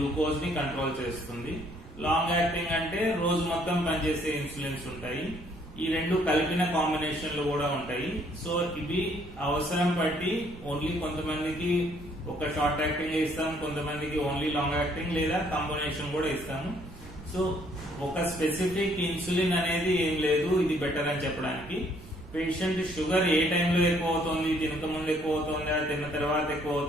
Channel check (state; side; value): noise; right; rumble, 17 dB below the sound